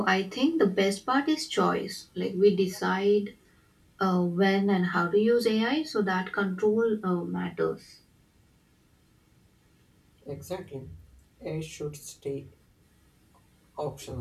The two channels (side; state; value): both; identical; correlation 1.00